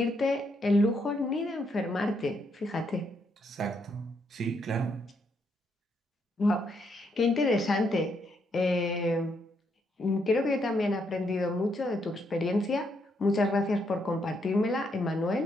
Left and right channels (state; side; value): normal; both; correlation 0.76